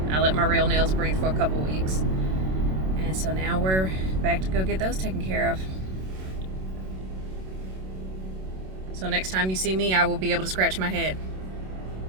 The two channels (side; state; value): left; late; 27 ms